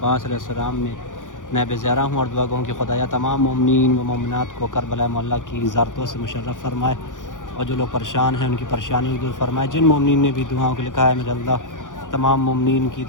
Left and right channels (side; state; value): right; late; 0.87 ms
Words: علیہ السلام میں نیب زیارہ ہوں اور دعا گوں کہ خدایا تمام مومنین و مومنات کو کربلا مولا کی زیارتوں سے مشرف فرمائے، اور جو لوگ پریشان ہیں ان کی پریشانی دور فرمائے۔ جن مومنین نے بھی دعاؤں کو لکھا ہے میرے اللہ تمام مومنین کی